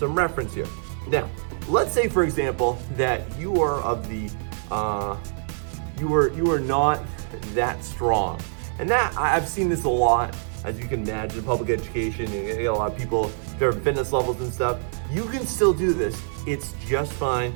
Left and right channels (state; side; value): silent; left; 62 dB below the other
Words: reference here. Now, let's say for example, that you are of the, you are not that strong. And that, I've seen this a lot, as you can imagine, public education, you get a lot of people, different fitness levels and stuff. You can still do this, it's just fine.